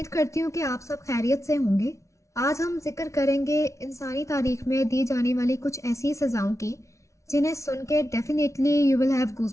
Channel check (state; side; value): late; right; 0.14 ms